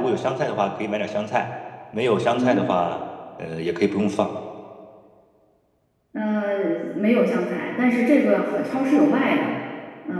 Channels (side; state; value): both; identical; correlation 1.00